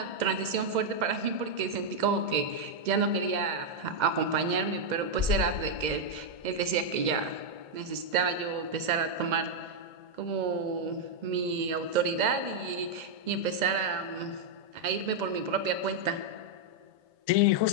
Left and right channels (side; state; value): left; late; 2.0 ms